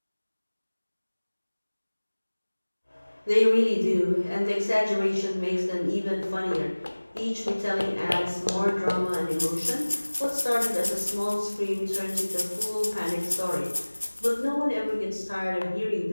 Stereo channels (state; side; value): inverted; both; correlation -1.00